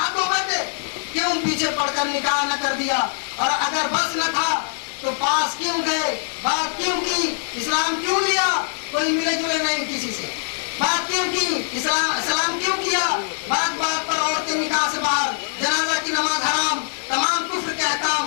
ہو بیٹھے، کیوں پیچھے پڑ کر نکاح نہ کر دیا، اور اگر بس نہ تھا تو پاس کیوں گئے، بات کیوں کی، اسلام کیوں لیا، کوئی ملے جلے نہیں کسی سے، بات کیوں کی، اسلام کیوں کیا، بات بات پر عورتیں نکاح سے باہر، جنازہ کی نماز حرام، تمام کفر کے احکام،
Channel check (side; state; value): right; silent; 64 dB below the other